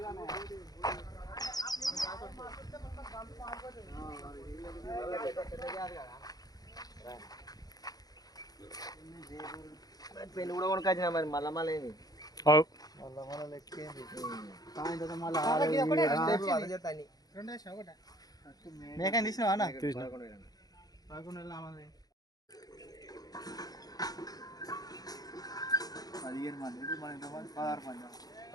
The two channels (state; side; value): late; right; 0.18 ms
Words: పెళ్లి కూడా కొనుకొచ్చిన మరి మళ్ళా మళ్ళీ మేకని తీసినావా అన్న? తీసిన.